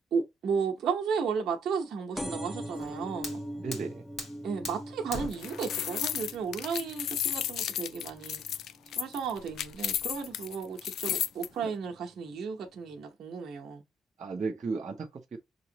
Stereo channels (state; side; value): normal; both; correlation 0.64